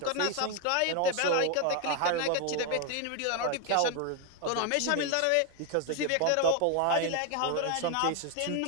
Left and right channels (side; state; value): both; different; correlation 0.01